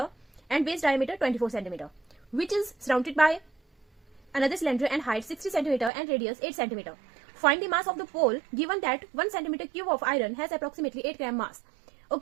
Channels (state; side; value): drops out; left; at 5.9 s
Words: and base diameter 24 centimetre which is surrounded by another cylinder and height 60 centimeter and radius 8 centimeter. Find the mass of the pole given that 1 centimeter cube of iron has approximately 8 gram mass.